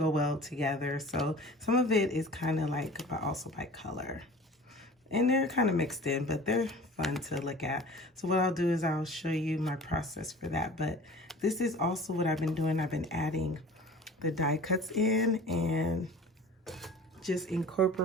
well together. So some of it is kind of like, but also by color. And they're kind of mixed in, but they're fun to look at. So what I'll do is I'll show you my process for that. But this is also what I've been doing. I've been adding the die cuts in and just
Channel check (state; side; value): normal; both; correlation 0.42